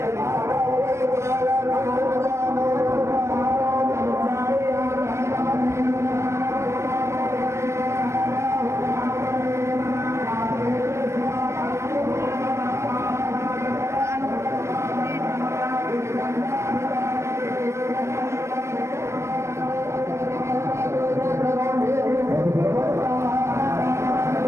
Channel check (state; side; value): late; left; 0.13 ms